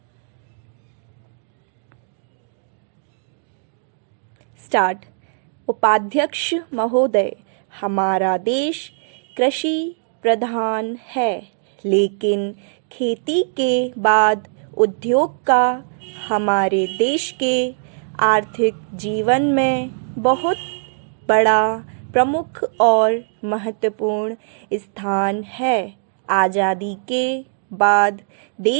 स्टार्ट। उपाध्यक्ष महोदय, हमारा देश कृषि प्रधान है, लेकिन खेती के बाद उद्योग का हमारे देश के आर्थिक जीवन में बहुत बड़ा, प्रमुख और महत्वपूर्ण स्थान है। आज़ादी के बाद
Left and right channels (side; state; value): left; silent; digital silence